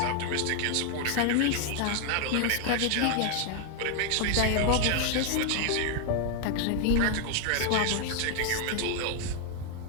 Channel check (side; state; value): both; different; correlation 0.00